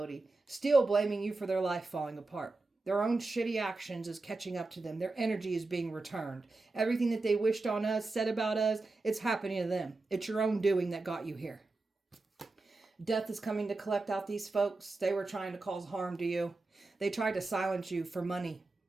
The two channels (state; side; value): quieter; left; 3.4 dB